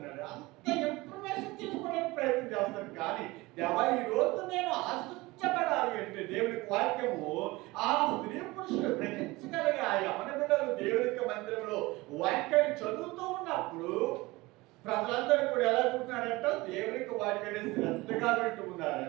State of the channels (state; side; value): quieter; left; 21.4 dB